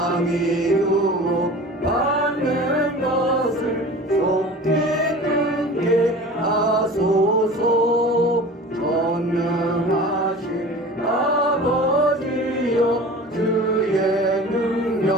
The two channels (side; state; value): both; normal; correlation 0.39